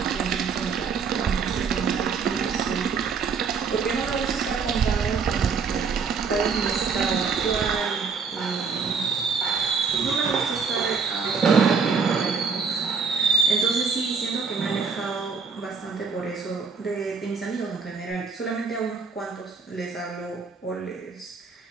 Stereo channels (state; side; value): quieter; left; 5.4 dB